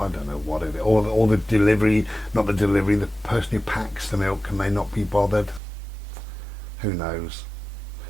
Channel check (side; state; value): left; drops out; at 5.6 s